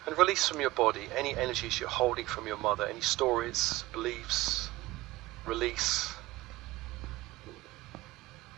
And release from your body any energies you're holding from your mother, any stories, beliefs. Release.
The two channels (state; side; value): quieter; left; 18.3 dB